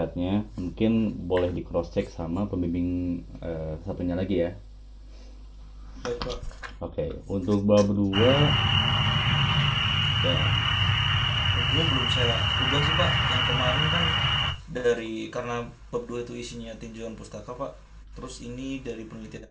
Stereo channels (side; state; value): both; identical; correlation 1.00